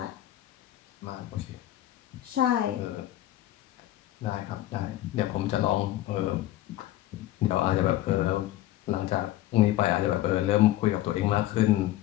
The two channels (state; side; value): quieter; right; 14.7 dB